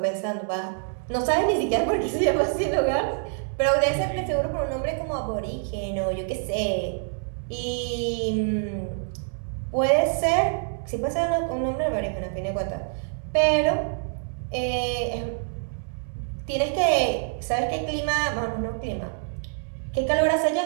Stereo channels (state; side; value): silent; left; 61 dB below the other